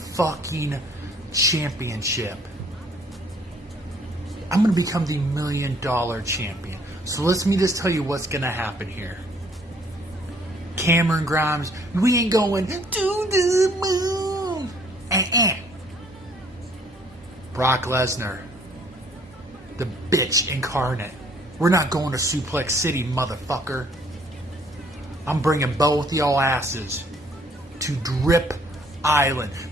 championship. I'm gonna become the $1 Million Champion. So let me just tell you what's gonna happen here. Cameron Grimes, we ain't going to the moon. Brock Lesnar, the bitch incarnate. We're not going to Suplex City, motherfucker. I'm bringing both y'all asses to Drip Island.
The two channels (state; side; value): normal; both; correlation 0.62